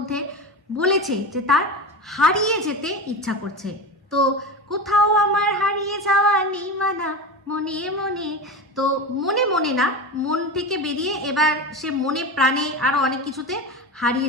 বলেছে যে তার হারিয়ে যেতে ইচ্ছা করছে। তো কোথাও আমার হারিয়ে যাওয়া নেই মানা মনে মনে। তো মনে মনে না, মন থেকে বেরিয়ে এবার সে মনে প্রাণে আরো অনেক কিছুতে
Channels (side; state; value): both; normal; correlation 0.24